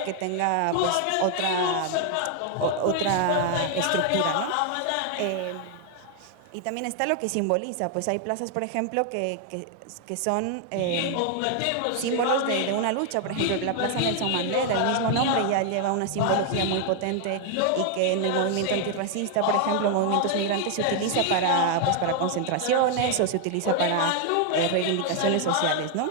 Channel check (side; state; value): both; different; correlation 0.00